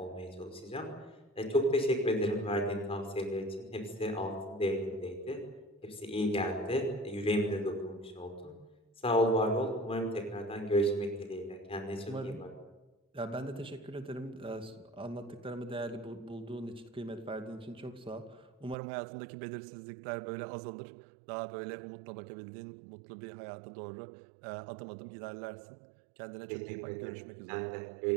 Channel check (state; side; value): drops out; left; at 18.8 s